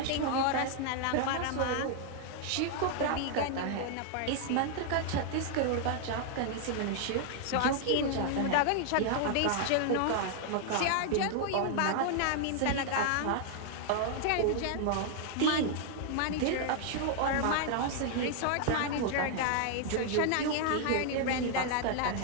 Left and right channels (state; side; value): different; both; correlation 0.00